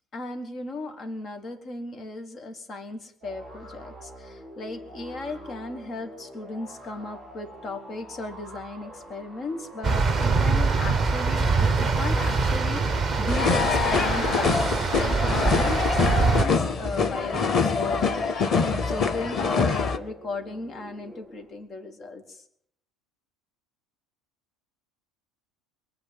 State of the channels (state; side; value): normal; both; correlation 0.66